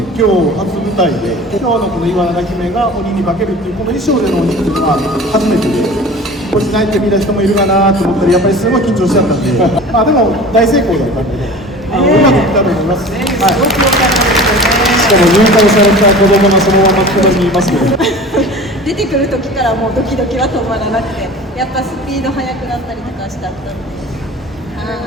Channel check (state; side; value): normal; both; correlation 0.39